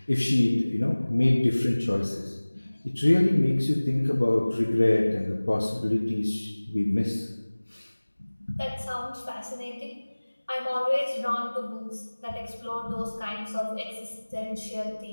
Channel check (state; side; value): inverted; both; correlation -1.00